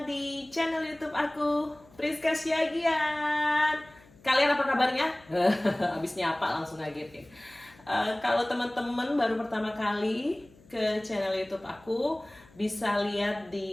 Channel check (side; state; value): left; noise; hum, 26 dB below the sound